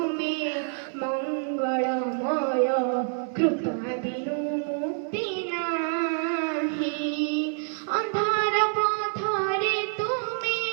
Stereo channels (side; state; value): left; silent; digital silence